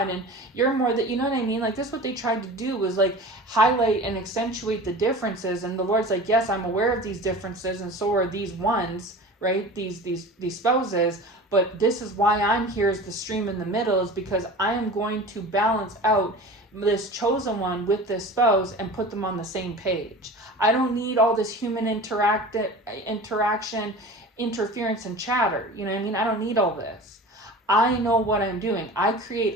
and you're more that, you know what I mean? Like this, what they tried to do was like highlight and accentuate the differences. And the Lord's like, yes, I'm aware of these differences, and so are these ones, right? These spouses. But this is why I'm here as the stream in the middle, is because I am going to balance out this chosen one with this spouse and put them on the same page. I don't need all this human interaction, interference, and chatter. You know what I mean? I don't need all this. I know what I'm doing. I create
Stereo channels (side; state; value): both; normal; correlation 0.36